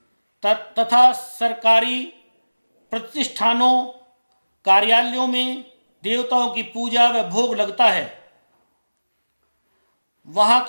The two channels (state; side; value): inverted; both; correlation -1.00